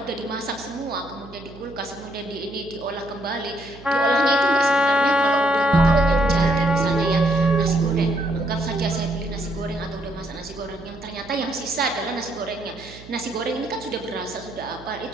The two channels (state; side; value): noise; right; hum, 18 dB below the sound